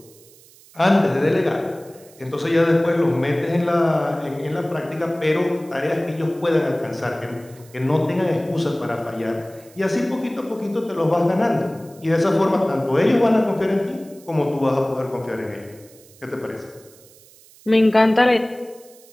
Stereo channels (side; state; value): right; noise; hiss, 25 dB below the sound